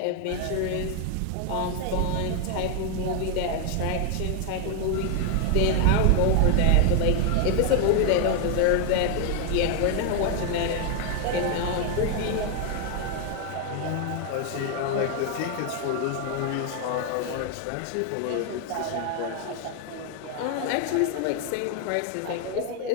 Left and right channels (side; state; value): both; different; correlation 0.00